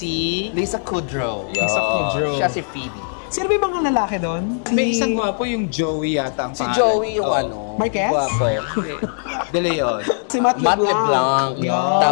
Lisa Kudrow. Lisa Kudrow. Siya si Phoebe. Sino ba yung mga lalaki doon? May isang gwapo yung Joey yata ang Si pangalan. Joey yung Oo. Marquez? Gwapo. De Leon. Si Matt Matt LeBlanc. LeBlanc. Yan.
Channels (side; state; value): right; silent; 64 dB below the other